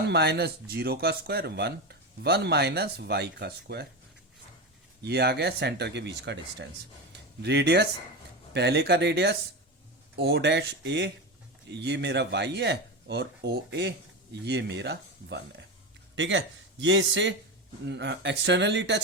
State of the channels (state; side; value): normal; both; correlation 0.19